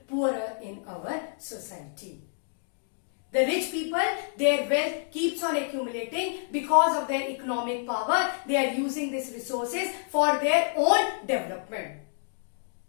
poorer in our society. The rich people, their wealth keeps on accumulating because of their economic power. They are using these resources for their own development.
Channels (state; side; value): silent; right; digital silence